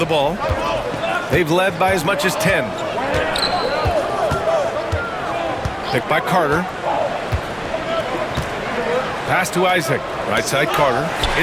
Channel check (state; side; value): identical; both; correlation 1.00